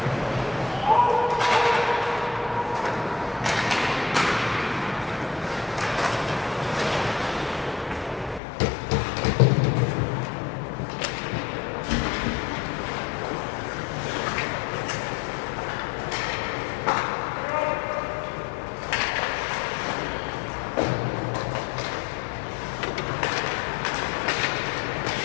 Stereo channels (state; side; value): drops out; right; at 8.4 s